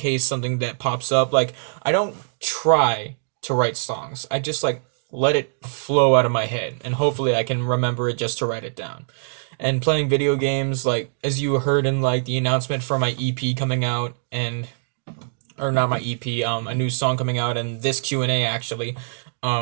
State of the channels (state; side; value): silent; left; digital silence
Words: something that pops up. Like I don't try to write songs. I just like let it flow out of my head and hopefully I can remember it just to write it down. And playing video games like as you heard in like the announcement for my EP coming out and or not my EP, a new song coming out and this Q&A actually.